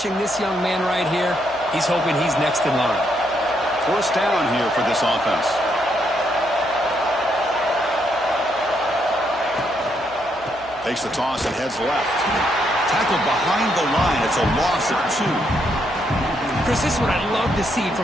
this young man right here, he's hoping he's next in line. First down here for this offense. Takes the toss and heads left. Tackled behind the line. It's a loss of 2. Chris, this is what I love to see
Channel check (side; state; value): right; noise; hum, 24 dB below the sound